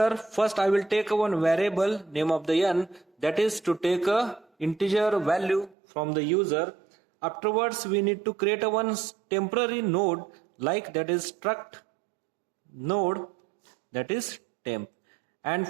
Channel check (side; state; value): left; drops out; at 5.8 s